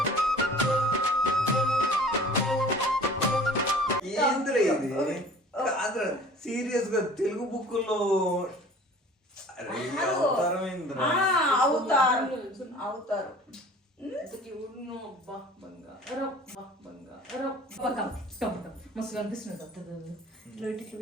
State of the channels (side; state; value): both; normal; correlation 0.46